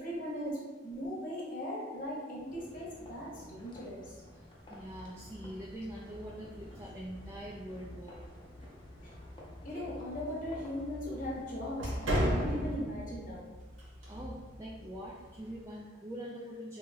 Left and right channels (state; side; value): normal; both; correlation 0.61